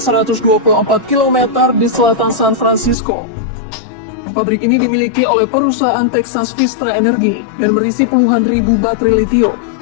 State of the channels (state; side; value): drops out; right; at 3.0 s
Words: km di selatan San Francisco. Pabrik ini dimiliki oleh perusahaan Texas Vistra Energy dan berisi puluhan ribu baterai lithium.